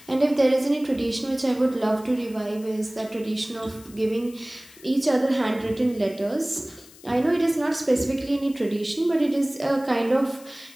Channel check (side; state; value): left; noise; hiss, 22 dB below the sound